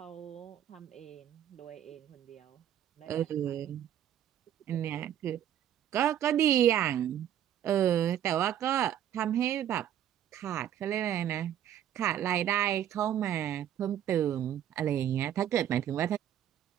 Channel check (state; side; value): quieter; left; 10.8 dB